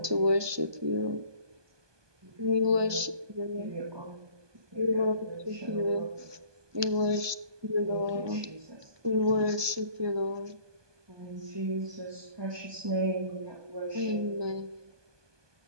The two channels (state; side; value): late; left; 1.2 ms